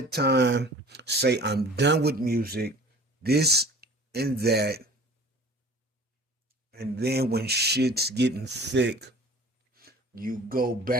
time, say, I'm done with music, this and that, and then when shit's getting thick, you go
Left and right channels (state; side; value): normal; both; correlation 0.44